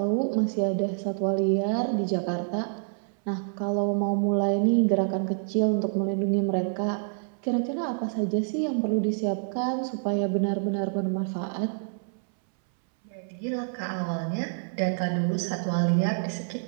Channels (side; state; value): left; silent; 60 dB below the other